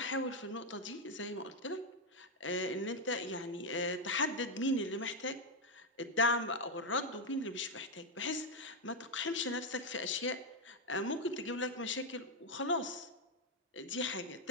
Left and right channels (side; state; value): both; normal; correlation 0.04